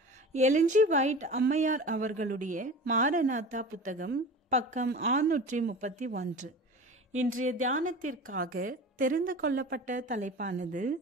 LNG white அம்மையார் அவர்களுடைய மாரநாதா புத்தகம், பக்கம் 631. இன்றைய தியானத்திற்காக தெரிந்து கொள்ளப்பட்ட தலைப்பானது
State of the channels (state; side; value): normal; both; correlation 0.35